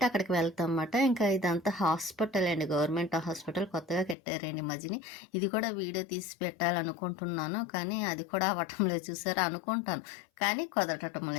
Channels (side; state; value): right; drops out; at 4.2 s